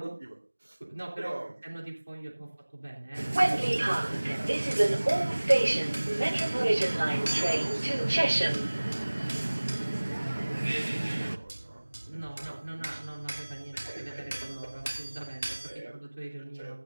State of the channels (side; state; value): both; inverted; correlation -1.00